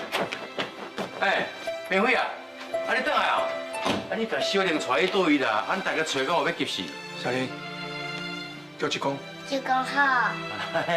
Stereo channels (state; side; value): identical; both; correlation 1.00